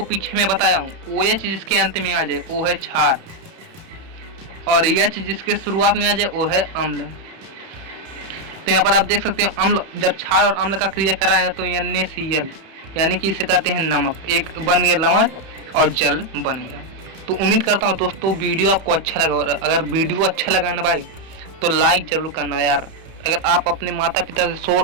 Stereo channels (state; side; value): late; left; 31 ms